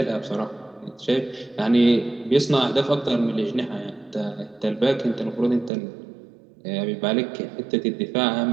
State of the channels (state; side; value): drops out; left; at 5.7 s